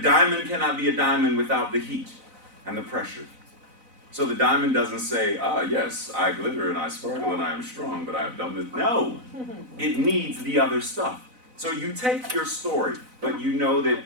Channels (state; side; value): late; left; 4.0 ms